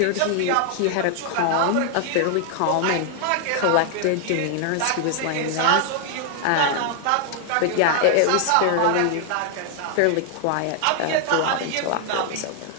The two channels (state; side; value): different; both; correlation 0.00